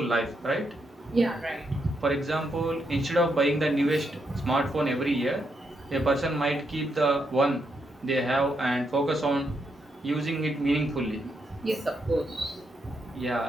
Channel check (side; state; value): both; normal; correlation 0.80